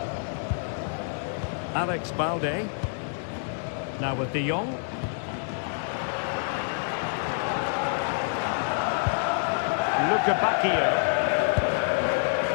Alex Balde. Now with De Jong. Luca Bacchio.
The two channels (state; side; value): silent; right; digital silence